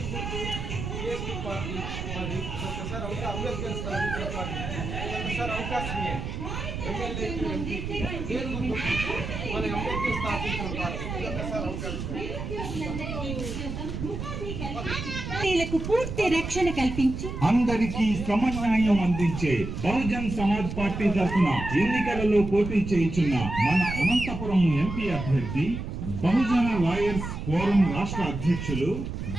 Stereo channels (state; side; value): noise; right; rumble, 6 dB below the sound